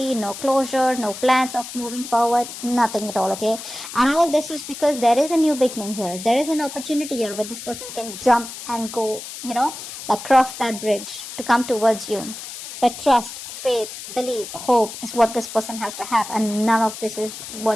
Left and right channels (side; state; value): left; noise; hiss, 11 dB below the sound